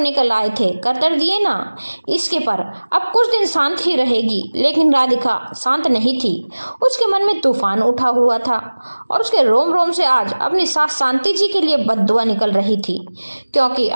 निकल आए थे, कर दिए ना। इसके पर अब कुछ दिन शांत ही रहेगी, लेकिन राधिका शांत नहीं थी। उसके मन में तूफान उठा हुआ था और उसके रोम रोम से आज अपनी सास शांति जी के लिए बद्दुआ निकल रही थी, क्योंकि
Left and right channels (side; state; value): both; inverted; correlation -1.00